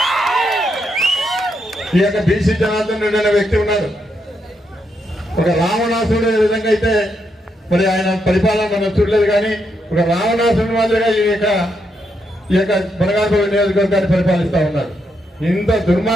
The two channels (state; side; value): normal; both; correlation 0.80